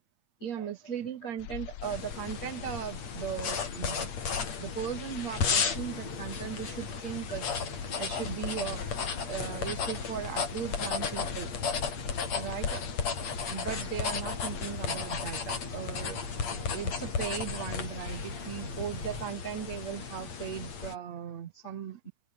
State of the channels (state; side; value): late; right; 8.6 ms